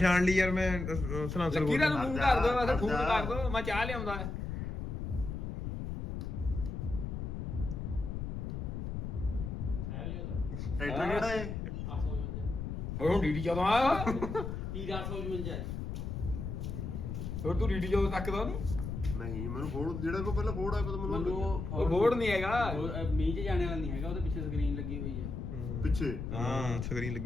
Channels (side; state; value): left; noise; rumble, 4 dB below the sound